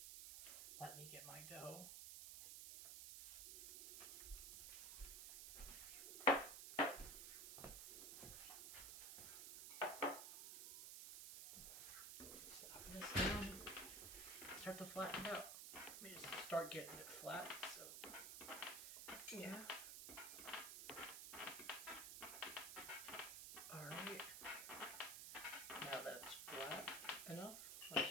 Let me get my dough. Slap this down. Start to flatten it out. Let me just start getting it flat. So, yeah. Alright, now that it's flat enough, I'll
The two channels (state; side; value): noise; right; hiss, 6 dB below the sound